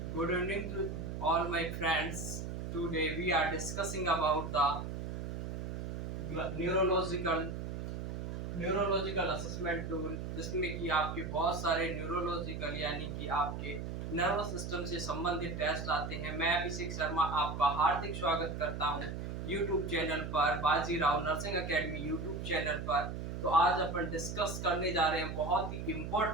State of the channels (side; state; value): right; noise; hum, 5 dB below the sound